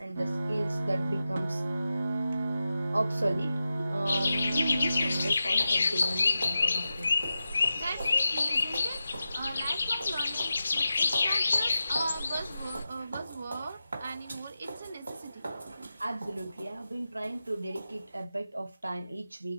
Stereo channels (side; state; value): both; inverted; correlation -0.91